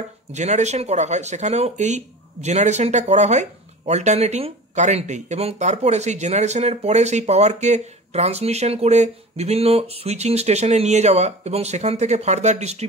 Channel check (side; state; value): both; normal; correlation 0.36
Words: জেনারেশন করা হয়, সেখানেও এই জেনারেশনটা করা হয় অল্টারনেটিং কারেন্টেই। এবং তারপরে সেই জেনারেশনের পরে সেই পাওয়ারকে ট্রান্সমিশন করে বিভিন্ন সুইচিং স্টেশনে নিয়ে যাওয়া এবং সেখান থেকে ফার্দার